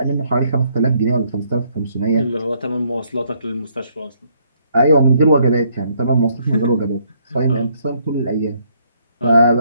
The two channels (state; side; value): inverted; both; correlation -0.69